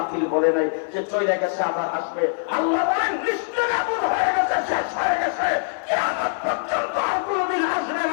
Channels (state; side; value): silent; right; digital silence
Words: বলে নাই যে চলে গেছে আবার আসবে। আল্লাহ বলেন নিস্তেনাবুদ হয়ে গেছে, শেষ হয়ে গেছে, কিয়ামত পর্যন্ত আর কোনোদিন আসবে